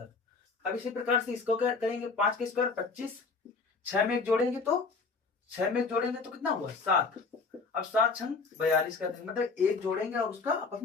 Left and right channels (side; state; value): right; quieter; 4.5 dB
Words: अब इसी प्रकार से इसको क्या करेंगे, 5 के स्क्वायर 25, 6 में एक जोड़ेंगे तो 6 में एक जोड़ेंगे तो कितना हुआ 7, अब 7 छंग 42 कर देंगे, मतलब एक जोड़ेंगे और उसका आपस